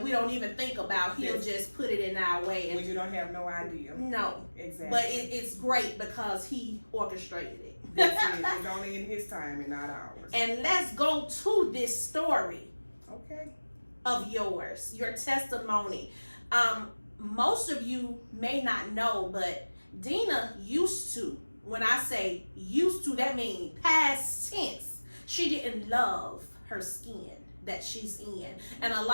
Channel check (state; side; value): inverted; both; correlation -1.00